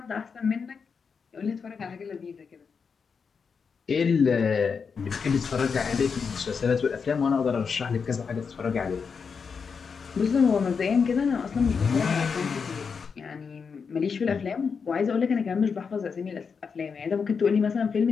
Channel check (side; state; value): right; quieter; 5.8 dB